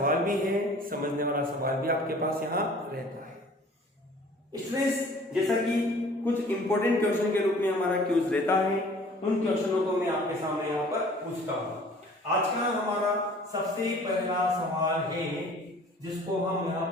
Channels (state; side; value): normal; both; correlation 0.50